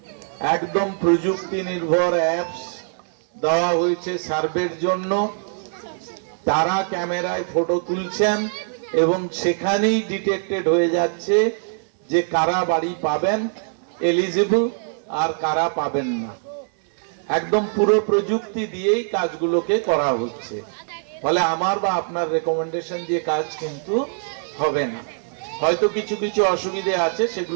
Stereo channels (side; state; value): left; silent; 64 dB below the other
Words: একদম প্রযুক্তি নির্ভর অ্যাপস দেওয়া হয়েছে সার্ভের জন্য। তারা ক্যামেরায় ফটো তুলছেন এবং সেখানেই ডিটেক্টেড হয়ে যাচ্ছে যে কারা বাড়ি পাবেন এলিজিবল আর কারা পাবেন না। একদম পুরো প্রযুক্তি দিয়েই কাজগুলোকে করা হচ্ছে। ফলে আমার বা আপনার রেকমেন্ডেশন দিয়ে কাজ কিন্তু হবে না। হয়তো কিছু কিছু অসুবিধে আছে,